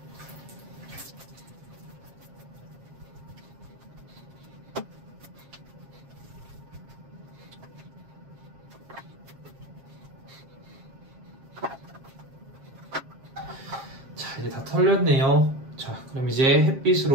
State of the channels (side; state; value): left; late; 7.5 ms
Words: 자, 이제 다 털렸네요. 자, 그럼 이제